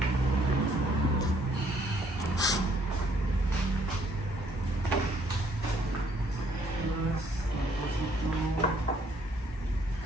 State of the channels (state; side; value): normal; both; correlation 0.65